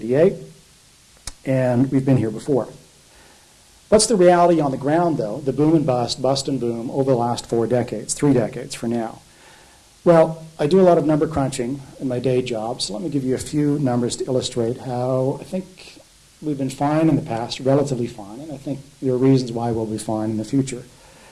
and we've been here before. What's the reality on the ground, though, the boom and bust, bust and boom, over the last 4 decades, 3 decades for now? Well, I do a lot of number crunching in my day job, so let me give you a few numbers to illustrate how I think we've been fine in the past, relatively fine, and I think there are reasons why we'll be fine in the future.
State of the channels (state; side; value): identical; both; correlation 1.00